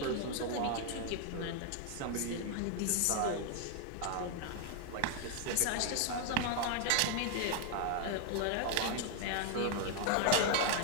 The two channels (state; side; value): different; both; correlation 0.00